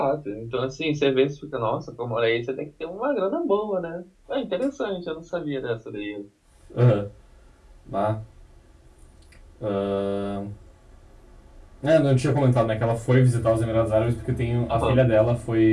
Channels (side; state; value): both; identical; correlation 1.00